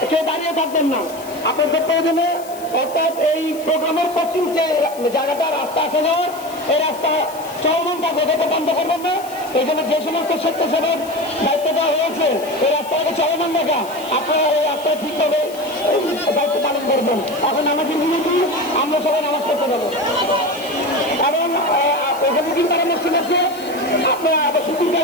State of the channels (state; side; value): noise; left; hiss, 18 dB below the sound